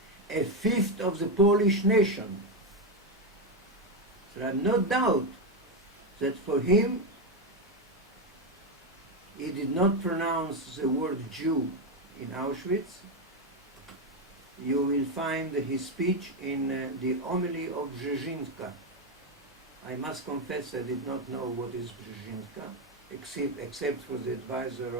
a fifth of the Polish nation. There are no doubt that for him, he did not pronounce the word Jew in Auschwitz. You will find his speech in the homily of Brzezinska. I must confess I did not know what is Brzezinska, except for the advisor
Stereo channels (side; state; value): both; normal; correlation 0.08